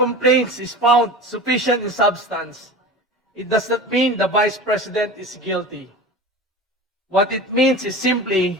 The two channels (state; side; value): normal; both; correlation 0.33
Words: is found sufficient in substance, it does not mean the Vice President is guilty. What it means is simply